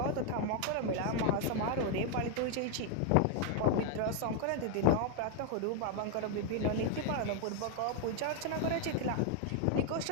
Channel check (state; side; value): different; both; correlation 0.00